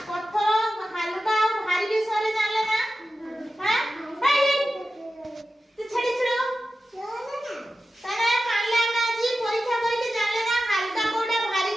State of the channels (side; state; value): both; normal; correlation 0.93